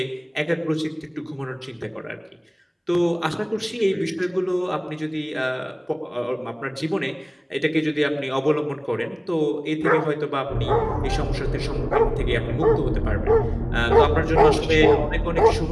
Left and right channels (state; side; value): identical; both; correlation 1.00